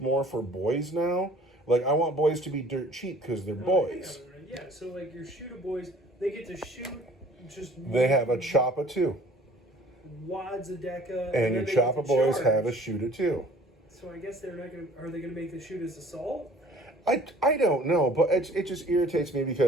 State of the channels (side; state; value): both; normal; correlation 0.51